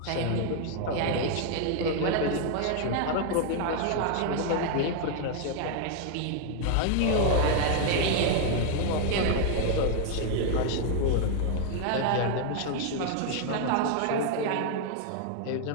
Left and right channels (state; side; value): different; both; correlation 0.00